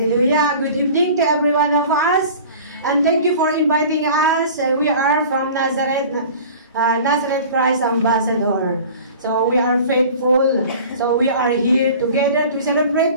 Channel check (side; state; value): both; inverted; correlation -0.42